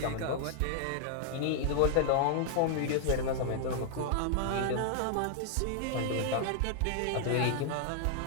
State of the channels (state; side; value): different; both; correlation 0.00